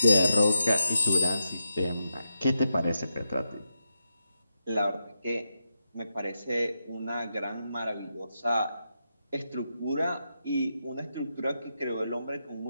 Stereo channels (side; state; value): both; inverted; correlation -0.86